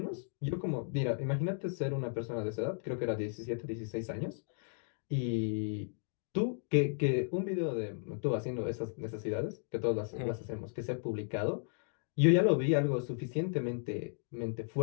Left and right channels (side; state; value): right; silent; digital silence